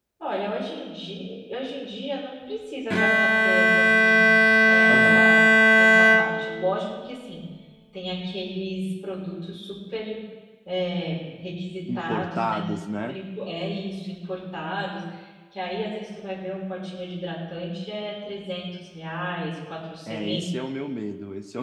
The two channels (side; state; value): both; identical; correlation 1.00